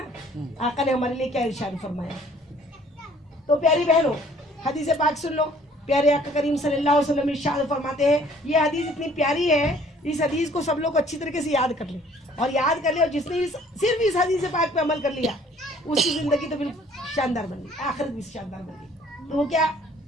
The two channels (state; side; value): normal; both; correlation 0.57